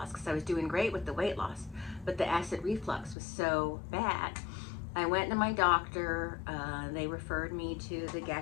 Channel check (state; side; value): drops out; right; at 3.2 s